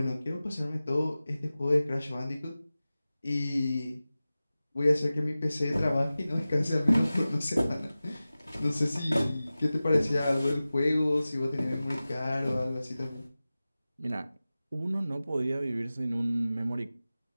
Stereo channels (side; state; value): both; inverted; correlation -0.96